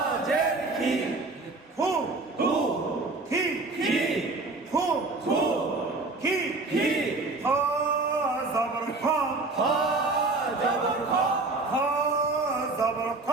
কি হু হু কি কি হু হু কি কি জবর খা হ জবর খ জবর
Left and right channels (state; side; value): quieter; left; 3.4 dB